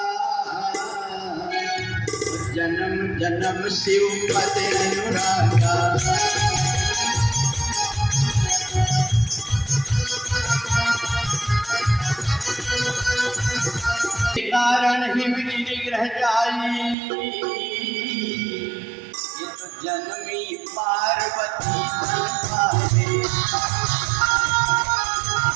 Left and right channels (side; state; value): left; drops out; at 16.9 s